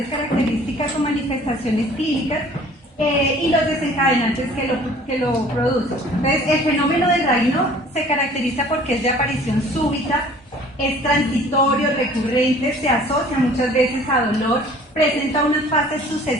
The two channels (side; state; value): both; normal; correlation 0.51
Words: características o manifestaciones clínicas y los desencadenantes que lo producen. Entonces, el fenómeno de Raynaud se caracteriza porque es de aparición súbita, es transitorio, recurrente, se asocia muchas veces a dolor, presenta unas fases